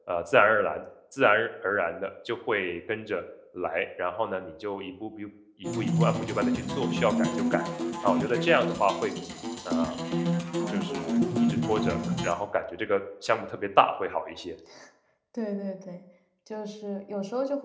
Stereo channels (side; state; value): both; identical; correlation 1.00